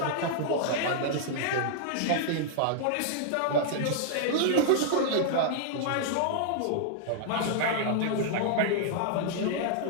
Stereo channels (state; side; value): different; both; correlation -0.01